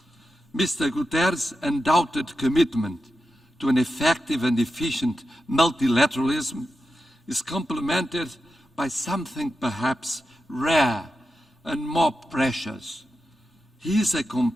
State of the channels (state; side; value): normal; both; correlation 0.90